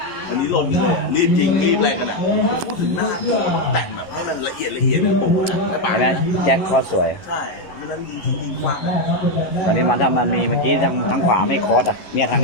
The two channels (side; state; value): right; late; 11 ms